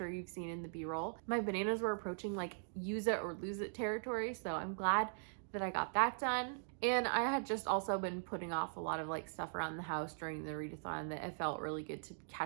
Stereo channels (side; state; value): left; silent; digital silence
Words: you've seen in the B-roll. My bananas were approaching like use it or lose it territory, so I'm glad that I got that done. And I had just also been putting off a lot of like stuff around the house during the readathon that it felt really good to